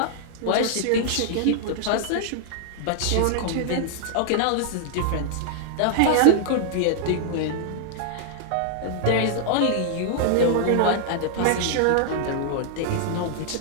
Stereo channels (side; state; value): both; different; correlation -0.01